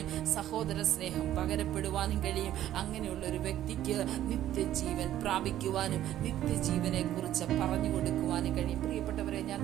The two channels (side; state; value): left; quieter; 12.5 dB